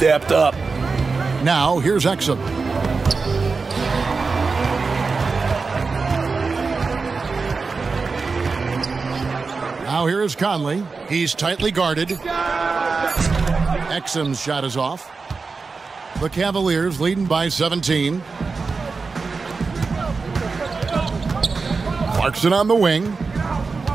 up. Now, here's Exum. Now here is Conley. He's tightly guarded. Exum's shot is off. The Cavaliers leading by 17. Clarkson on the wing.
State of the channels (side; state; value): left; quieter; 4.5 dB